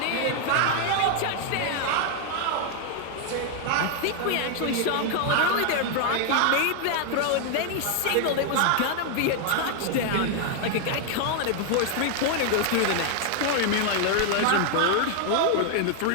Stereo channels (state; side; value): different; both; correlation 0.00